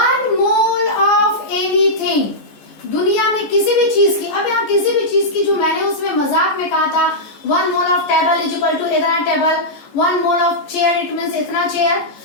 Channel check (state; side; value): late; right; 14 ms